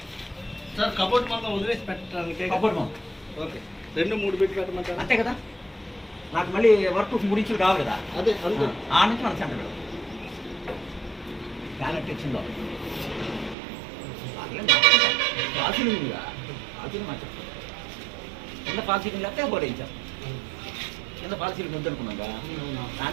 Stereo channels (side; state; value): left; drops out; at 13.6 s